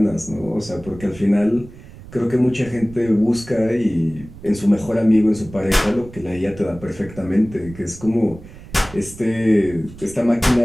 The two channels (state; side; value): noise; right; rumble, 17 dB below the sound